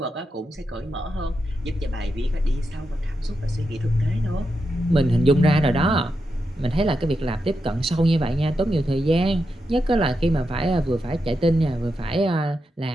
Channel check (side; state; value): both; normal; correlation 0.87